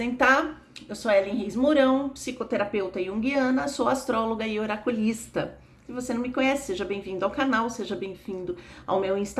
Eu sou Ellen Reis Mourão, psicoterapeuta junguiana, sou astróloga e oraculista. Se você não me conhece, seja bem-vindo ao canal, seja bem-vindo ao meu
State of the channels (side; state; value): both; identical; correlation 1.00